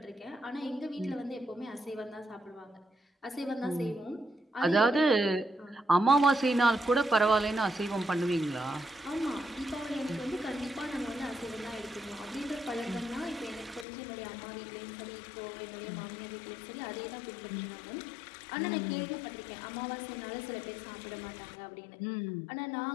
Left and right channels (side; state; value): right; drops out; at 13.9 s